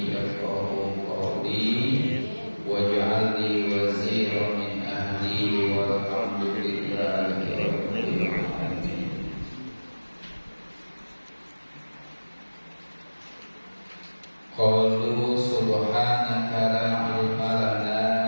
yafqahu qawli waj'al li waziran min ahli walhamdulillahi rabbil alamin. Qalu subhanaka la ilma lana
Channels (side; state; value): both; inverted; correlation -1.00